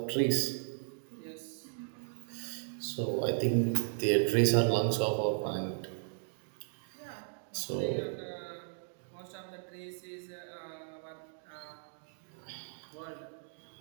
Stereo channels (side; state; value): left; silent; digital silence